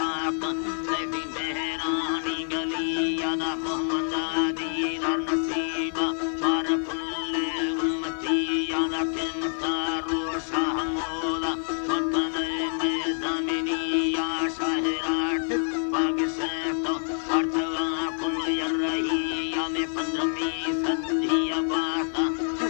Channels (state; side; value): silent; right; 60 dB below the other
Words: तेरी मेहरानी गली यादा मोहम्मद दीदार नसीबा मार कुल्ले उम्मती यादा किमता रूशा मोदा वकने में जमीनी या शाहराट पाग से तो अर्थवा कुल यरही या में 15वीं सदी अबाता